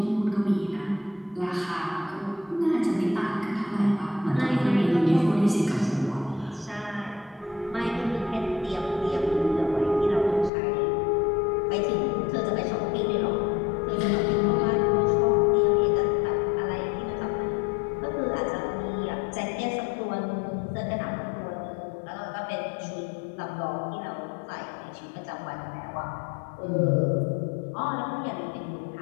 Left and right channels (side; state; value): right; drops out; at 10.5 s